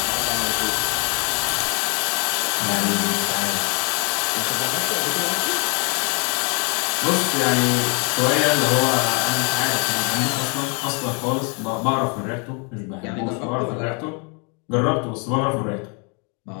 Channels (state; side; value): quieter; right; 35.3 dB